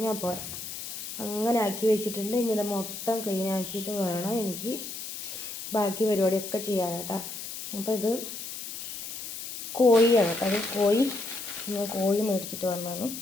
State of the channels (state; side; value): noise; left; hiss, 8 dB below the sound